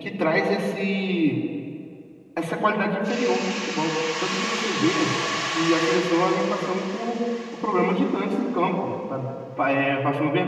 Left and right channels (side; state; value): both; identical; correlation 1.00